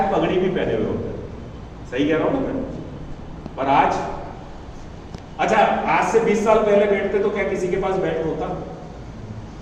पगड़ी भी पहने हुए होते। सही कह रहा हूं ना मैं? पर आज, अच्छा आज से 20 साल पहले बैठते तो क्या किसी के पास बैट होता?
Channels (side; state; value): both; identical; correlation 1.00